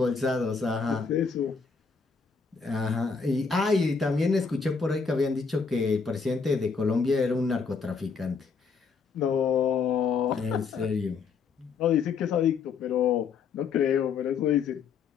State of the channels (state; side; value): quieter; right; 5.4 dB